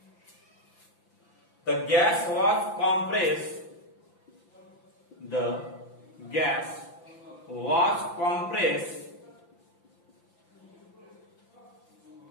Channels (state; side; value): late; right; 5.9 ms